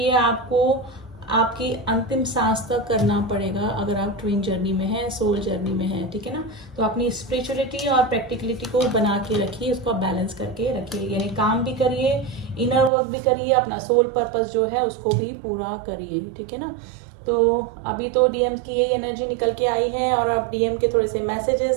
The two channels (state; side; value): drops out; left; at 12.9 s